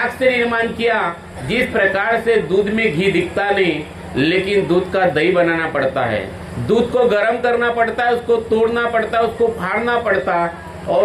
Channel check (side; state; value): both; identical; correlation 1.00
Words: से निर्माण किया। जिस प्रकार से दूध में घी दिखता नहीं, लेकिन दूध का दही बनाना पड़ता है, दूध को गर्म करना पड़ता है, उसको तोड़ना पड़ता है, उसको फाड़ना पड़ता,